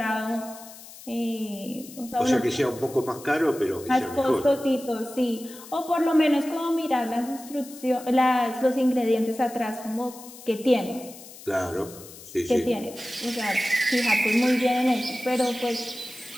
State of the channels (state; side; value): noise; left; hiss, 17 dB below the sound